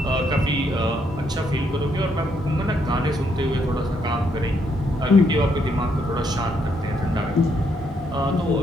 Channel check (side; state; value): both; normal; correlation 0.74